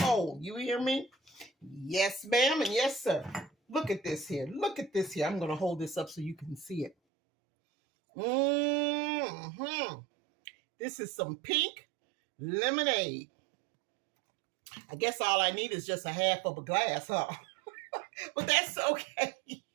You hear me? Yes, ma'am, and yes, sir. Look at this here. Look at this here. I'm going to hold this up so you can see it. This is some pink lemonade. I guess all I need is just a half of a glass, huh? But that's okay.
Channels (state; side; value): drops out; left; at 7.0 s